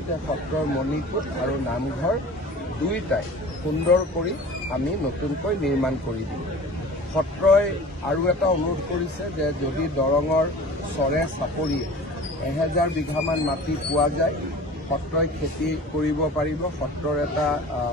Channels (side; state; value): both; normal; correlation 0.41